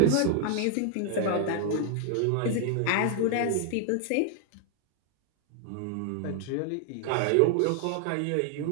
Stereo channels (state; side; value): different; both; correlation 0.00